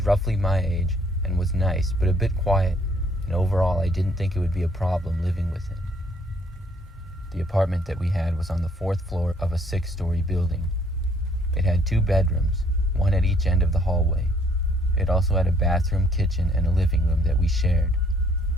roughly my age and was nice, but a bit quiet, and overall I didn't think it would be a problem living with him. The apartment that we had was on the 4th floor of a 6-story building. It had 2 bedrooms, one at each end of the hallway. It also had a bathroom, kitchen, and a living room that we shared.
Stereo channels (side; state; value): both; normal; correlation 0.64